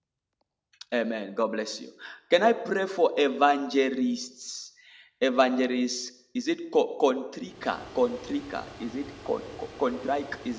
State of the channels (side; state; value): both; identical; correlation 1.00